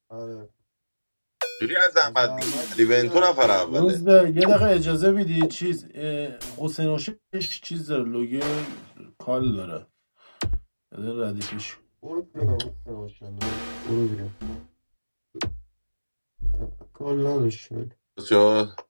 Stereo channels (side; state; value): both; inverted; correlation -1.00